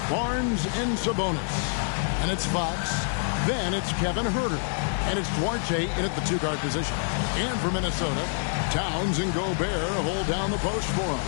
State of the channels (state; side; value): silent; right; digital silence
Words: Barnes and Sabonis. And it's Fox. Then it's Kevin Huerter. And it's Duarte in at the two-guard position. And for Minnesota, Towns and Gobert hold down the post for him.